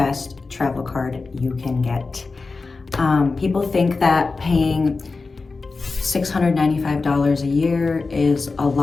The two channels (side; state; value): right; quieter; 4.0 dB